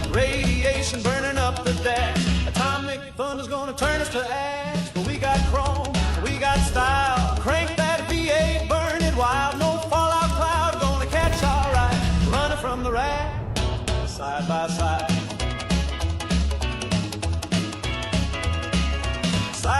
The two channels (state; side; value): identical; both; correlation 1.00